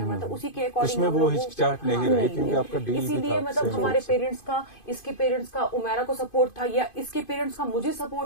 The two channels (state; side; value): late; right; 2.5 ms